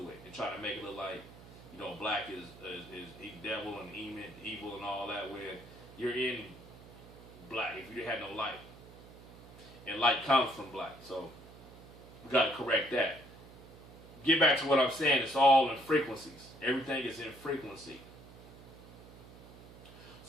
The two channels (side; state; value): right; noise; hum, 19 dB below the sound